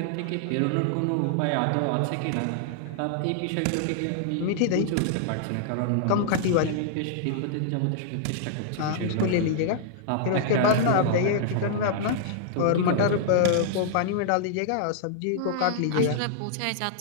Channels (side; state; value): both; different; correlation -0.01